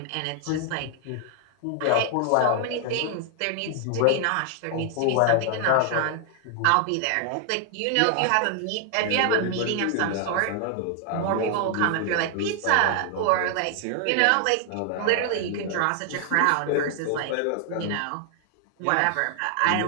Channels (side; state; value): both; different; correlation 0.00